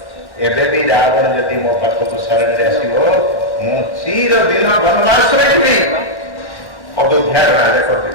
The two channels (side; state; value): right; late; 1.1 ms